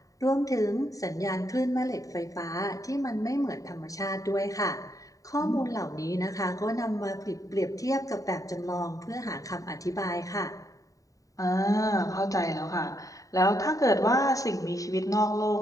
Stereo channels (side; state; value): right; late; 0.16 ms